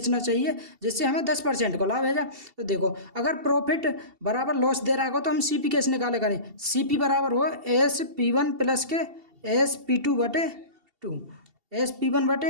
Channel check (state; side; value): late; left; 2.7 ms